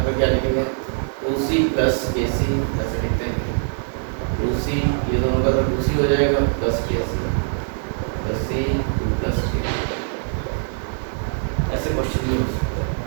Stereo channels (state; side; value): silent; left; 64 dB below the other